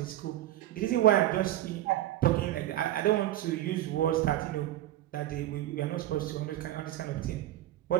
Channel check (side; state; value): left; quieter; 13.9 dB